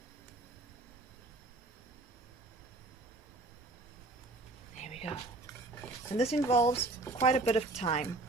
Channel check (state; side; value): quieter; left; 3.0 dB